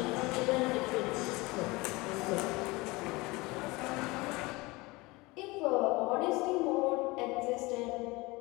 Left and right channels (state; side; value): quieter; right; 23.1 dB